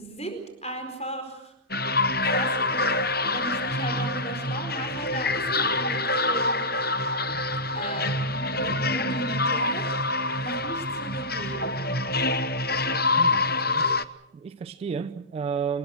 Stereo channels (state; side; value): normal; both; correlation -0.15